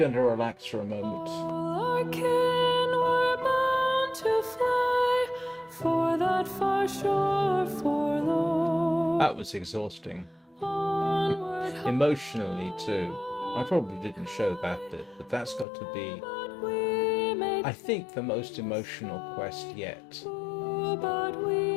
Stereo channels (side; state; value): right; drops out; at 15.7 s